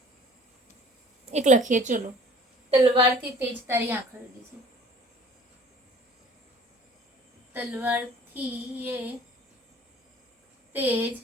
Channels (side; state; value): both; normal; correlation 0.50